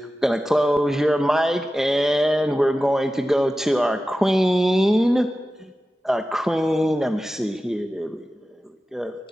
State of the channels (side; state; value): both; normal; correlation 0.94